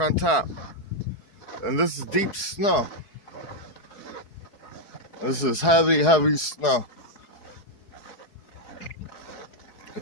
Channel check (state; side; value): late; right; 4.7 ms